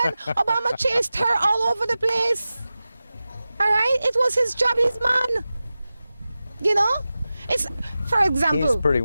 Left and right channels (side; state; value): both; inverted; correlation -0.95